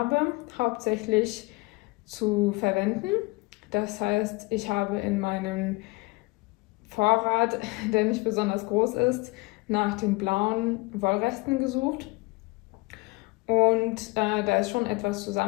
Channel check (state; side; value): quieter; right; 24.8 dB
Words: hauptsächlich zu verwenden. Das heißt, ich habe in meinem Vorrat, der nicht besonders groß ist, nach den blauen Wollresten gesucht. Und da ist schon etwas